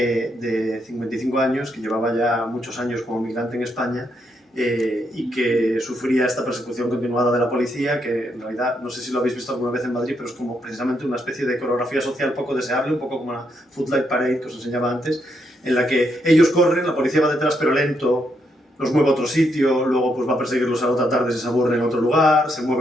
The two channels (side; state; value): both; normal; correlation 0.78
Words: 55 años, que llevaba ya muchos años como migrante en España, y que sufría esta persecución continuada de la policía, que en realidad, no sé si lo habéis visto alguna vez en Madrid, pero es como precisamente una especie de coreografía social poco deseable, un poco como la Footlight Parade que os enseñaba antes, en la que ellos corren, la policía va detrás pero lento, los mueve a otro sitio, luego pues va a perseguirlos a la otra tarde si se aburren en otro lugar, se